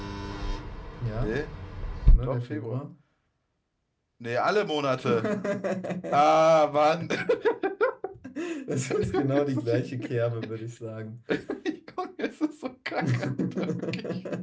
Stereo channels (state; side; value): identical; both; correlation 1.00